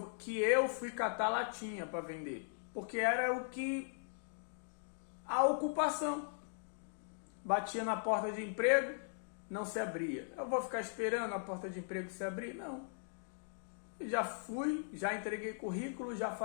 fui catar latinha para vender? Porque era a ocupação. Batia na porta de emprego, não se abria. Eu vou ficar esperando a porta de emprego se abrir? Não. Eu já fui, já entreguei currículo, já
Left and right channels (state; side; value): silent; right; digital silence